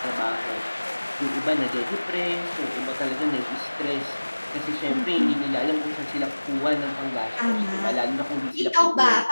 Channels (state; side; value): inverted; both; correlation -1.00